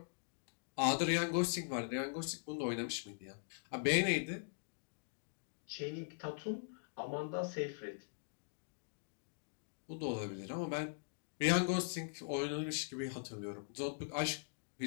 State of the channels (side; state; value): right; silent; digital silence